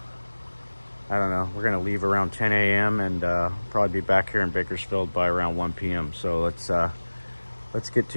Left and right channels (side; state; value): both; inverted; correlation -1.00